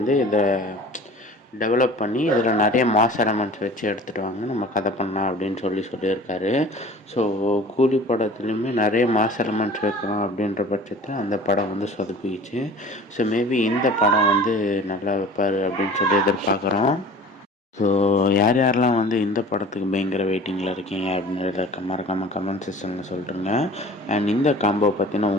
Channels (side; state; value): both; normal; correlation 0.43